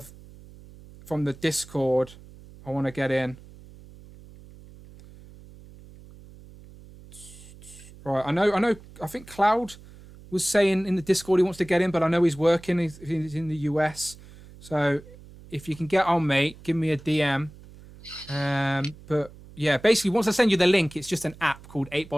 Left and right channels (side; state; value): right; noise; hum, 20 dB below the sound